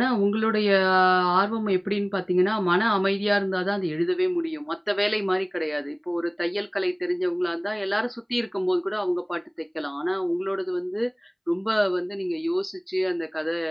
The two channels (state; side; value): identical; both; correlation 1.00